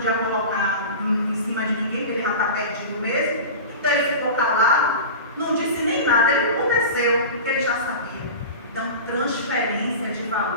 colocar em cima de ninguém, porque ele já está perdido mesmo, então ele ficou calado, não disse nem nada, ele aconteceu, porque ele já sabia. Então, transferência de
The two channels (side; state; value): both; inverted; correlation -0.31